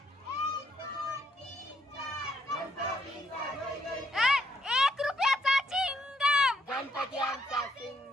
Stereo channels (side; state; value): both; normal; correlation 0.74